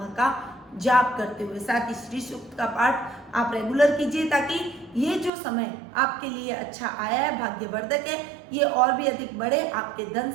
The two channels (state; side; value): drops out; left; at 5.3 s